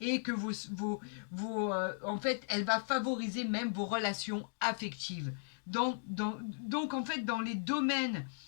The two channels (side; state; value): right; silent; digital silence